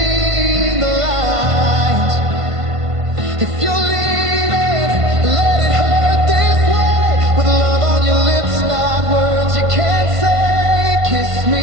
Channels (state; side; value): late; left; 1.5 ms